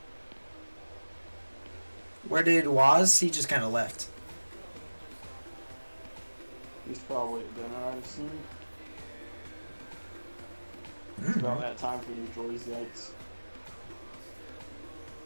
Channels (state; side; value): inverted; both; correlation -1.00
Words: Where did Waz? He just kind of left. He's probably at dinner, I'd assume. It's about that time for you to enjoy his lights.